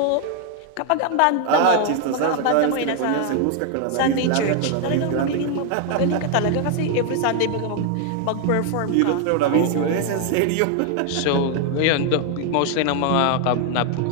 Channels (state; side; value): different; both; correlation 0.00